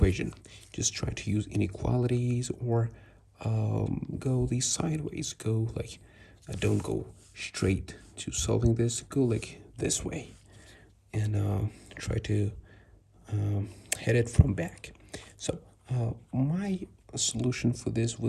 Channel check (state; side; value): identical; both; correlation 1.00